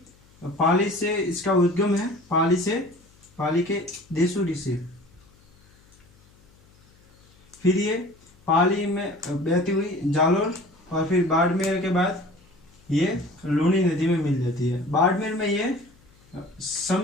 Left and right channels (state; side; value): noise; left; hum, 30 dB below the sound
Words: पाली से इसका उद्गम है, पाली के देसूरी से। फिर ये पाली में बहती हुई जालोर और फिर बाड़मेर के बाद ये लूनी नदी में मिल जाती है। बाड़मेर में ये